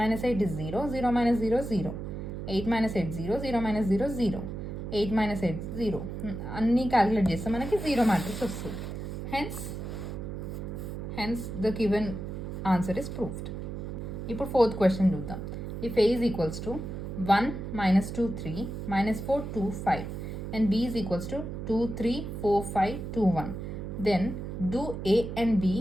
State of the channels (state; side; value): noise; right; hum, 6 dB below the sound